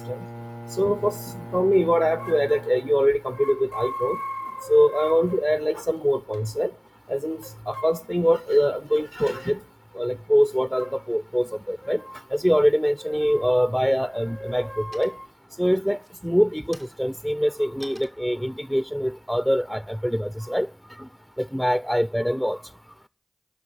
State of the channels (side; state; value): both; identical; correlation 1.00